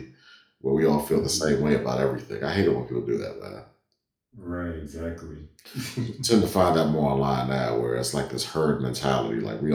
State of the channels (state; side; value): identical; both; correlation 1.00